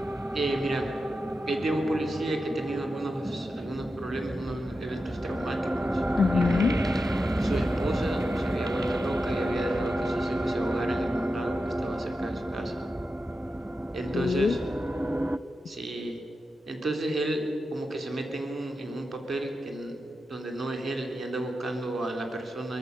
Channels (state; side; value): normal; both; correlation 0.90